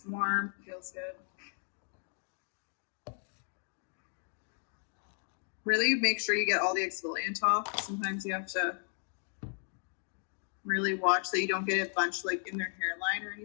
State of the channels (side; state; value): right; silent; 55 dB below the other